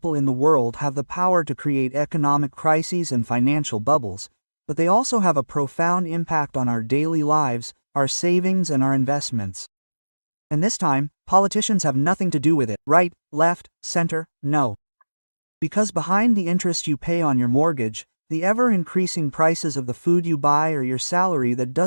in the world have the power to create economic crises and financial bubbles, but they also have a profound impact on our daily lives, our savings, and our investments. And this time, politicians have nothing to do with it. Right, left, center, no. Because behind the interest you pay on your mortgage, the ever-increasing prices of the food you buy, or your salary that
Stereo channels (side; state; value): both; inverted; correlation -1.00